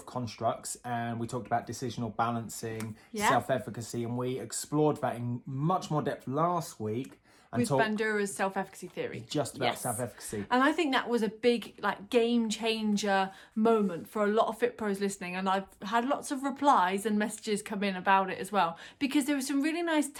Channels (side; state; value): both; identical; correlation 1.00